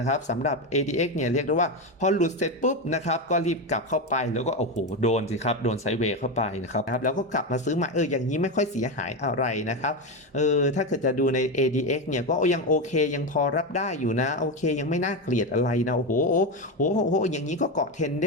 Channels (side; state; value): both; normal; correlation 0.14